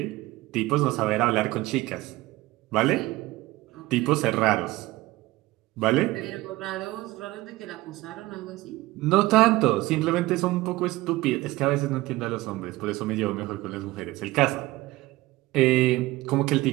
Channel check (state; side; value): quieter; left; 19.0 dB